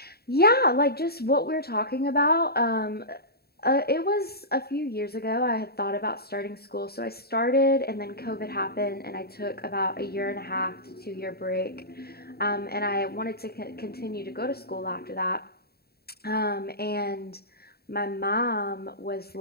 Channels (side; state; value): right; late; 0.46 ms